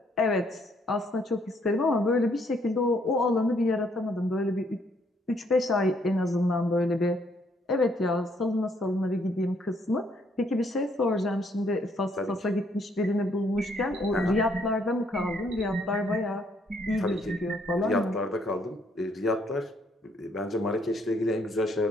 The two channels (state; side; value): normal; both; correlation 0.69